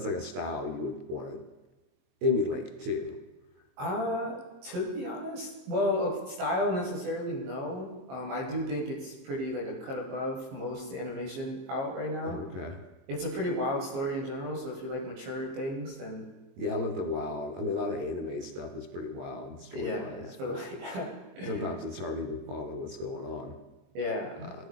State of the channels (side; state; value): left; late; 22 ms